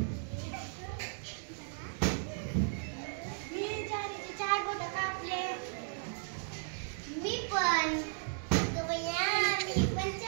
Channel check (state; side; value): silent; left; digital silence